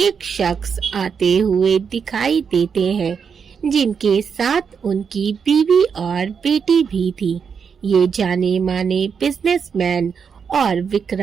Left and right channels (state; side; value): quieter; left; 6.4 dB